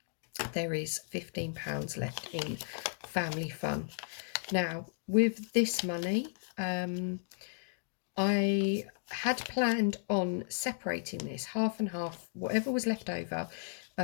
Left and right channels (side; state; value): right; silent; digital silence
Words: there is £15 left in family fun. Now with this money, I had planned on separating this half and half. Whatever was left over